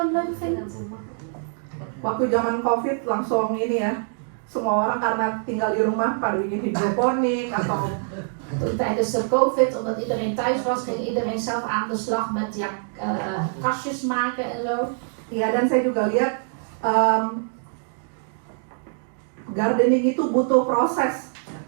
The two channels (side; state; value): left; silent; digital silence